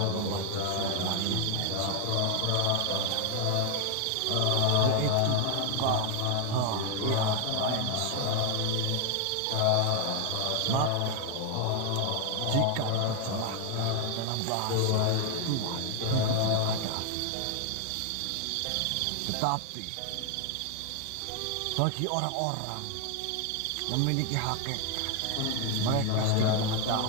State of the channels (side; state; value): both; different; correlation 0.00